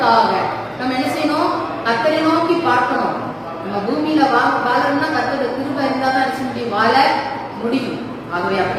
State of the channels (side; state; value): both; identical; correlation 1.00